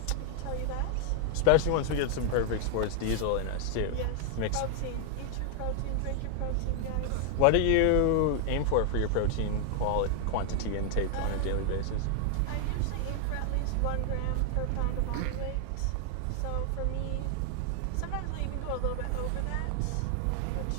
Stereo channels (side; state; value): both; different; correlation 0.00